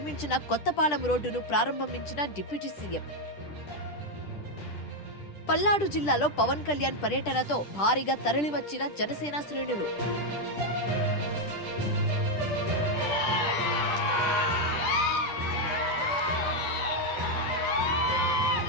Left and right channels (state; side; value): late; right; 10 ms